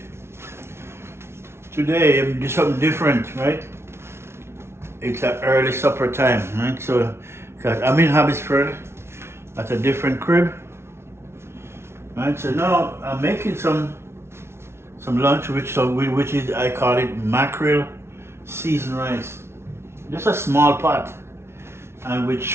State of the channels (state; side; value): late; left; 0.12 ms